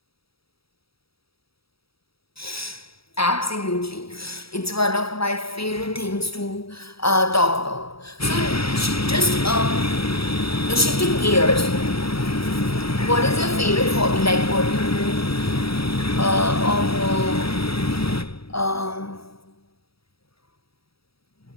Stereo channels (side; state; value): right; late; 0.76 ms